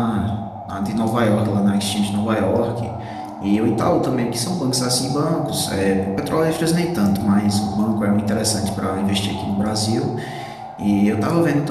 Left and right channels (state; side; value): identical; both; correlation 1.00